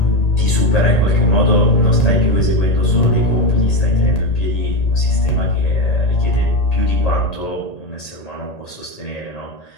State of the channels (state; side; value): late; right; 1.8 ms